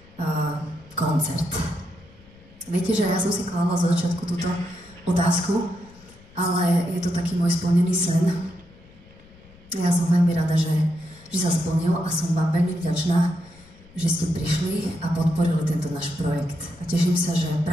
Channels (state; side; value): noise; left; rumble, 25 dB below the sound